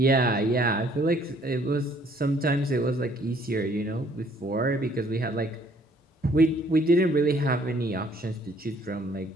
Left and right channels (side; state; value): both; normal; correlation 0.61